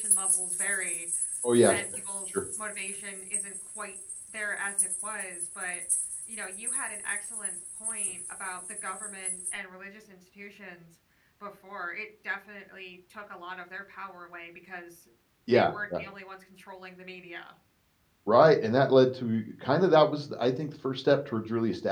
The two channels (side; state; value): both; identical; correlation 1.00